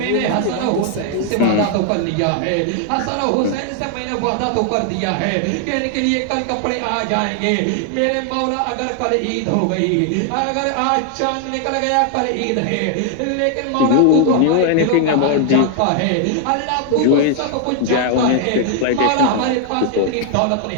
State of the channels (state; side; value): different; both; correlation 0.00